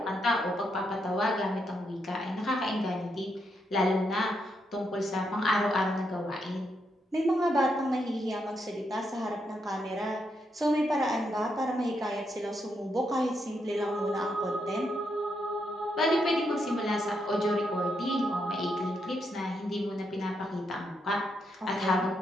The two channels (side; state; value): both; normal; correlation 0.80